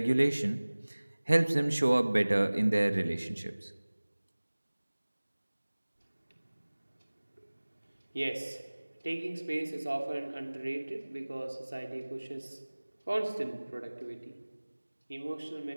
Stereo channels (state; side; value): inverted; both; correlation -1.00